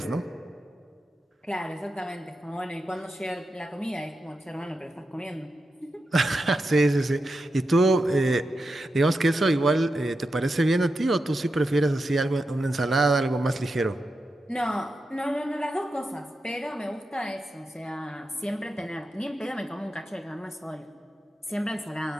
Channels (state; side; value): normal; both; correlation 0.89